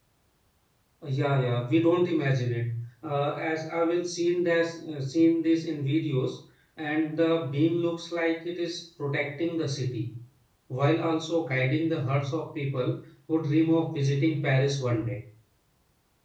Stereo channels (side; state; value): both; identical; correlation 1.00